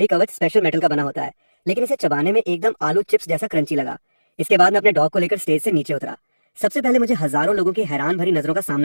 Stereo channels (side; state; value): both; inverted; correlation -1.00